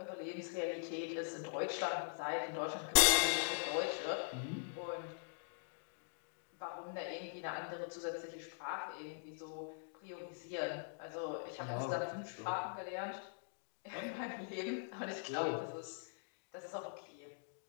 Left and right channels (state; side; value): silent; right; digital silence